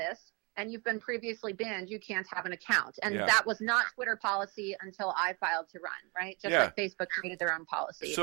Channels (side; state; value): left; quieter; 30.3 dB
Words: and you've been previously banned, you can't have an account. And that was not Twitter policy until I filed to run, right? Just like Facebook created their own policy.